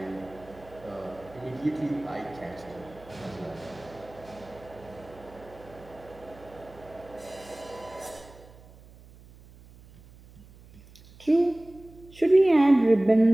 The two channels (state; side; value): noise; right; hum, 22 dB below the sound